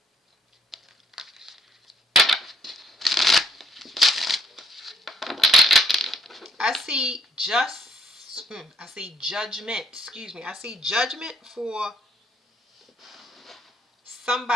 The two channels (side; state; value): both; normal; correlation 0.70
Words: I see I see judgment. Excuse me. I see judgment for